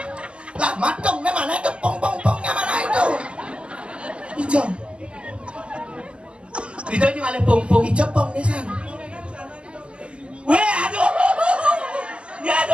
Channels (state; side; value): late; left; 0.052 ms